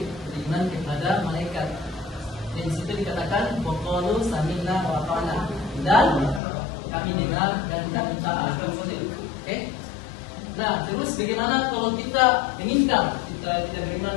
beriman kepada malaikat. Dan di situ dikatakan waqalu sami'na wa ata'na, dan kami dengar dan kami taat. Oke? Nah, terus bagaimana kalau kita meninggal, kita tidak beriman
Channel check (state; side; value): drops out; right; at 6.4 s